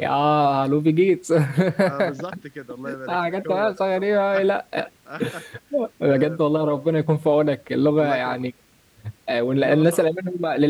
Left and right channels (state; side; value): identical; both; correlation 1.00